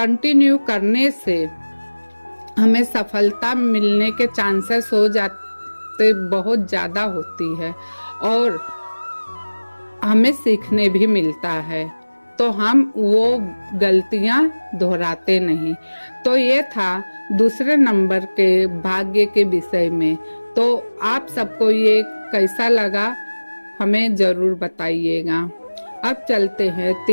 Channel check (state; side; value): inverted; both; correlation -1.00